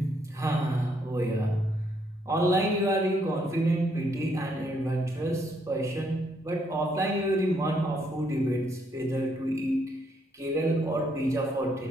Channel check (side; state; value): both; normal; correlation 0.73